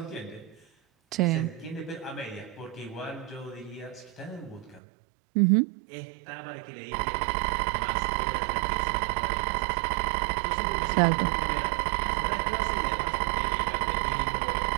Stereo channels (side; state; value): left; drops out; at 4.8 s